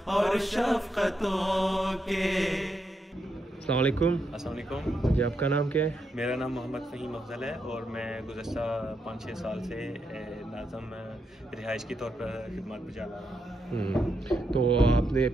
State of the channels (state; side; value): normal; both; correlation 0.82